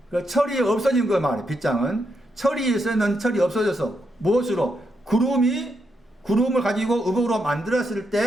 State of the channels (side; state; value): both; normal; correlation 0.81